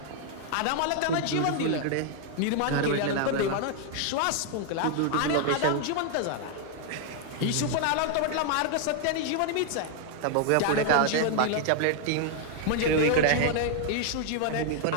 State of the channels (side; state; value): both; different; correlation 0.00